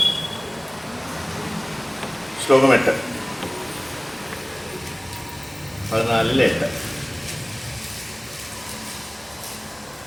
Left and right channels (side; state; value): right; noise; hum, 29 dB below the sound